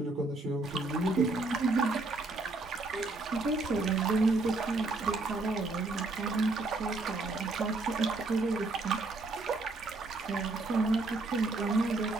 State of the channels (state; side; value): quieter; left; 3.3 dB